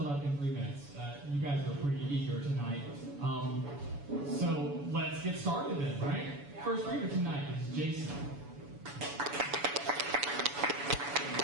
up in 3 minutes. You guys are pretty eager tonight. So let's get started then, right? First reader tonight is Jason.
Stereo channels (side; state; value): left; late; 7.0 ms